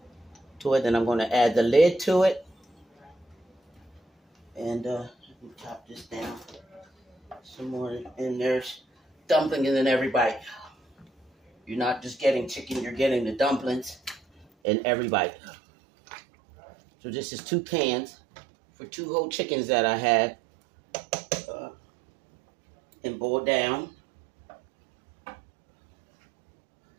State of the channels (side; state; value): left; drops out; at 14.5 s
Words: to it. Then I'm going to add the lid to it. And chop this down some more. And there's dumplings in every bite. You're not just getting chicken, you're getting the dumplings in every bite. So this is 2 cans for 2 whole chickens that I had and boiled down.